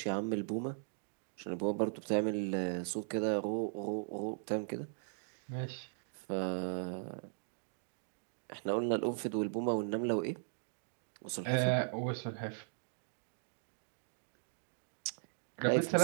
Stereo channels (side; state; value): left; silent; digital silence